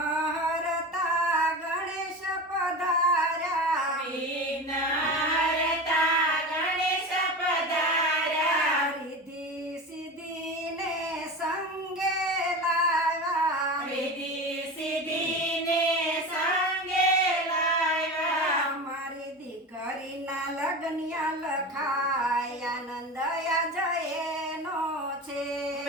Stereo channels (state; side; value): normal; both; correlation 0.28